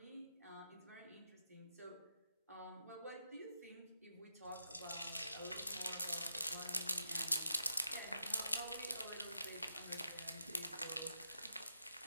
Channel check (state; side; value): inverted; both; correlation -0.82